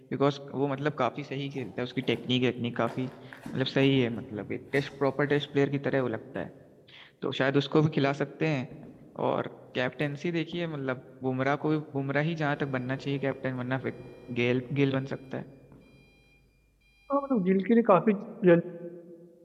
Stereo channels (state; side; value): identical; both; correlation 1.00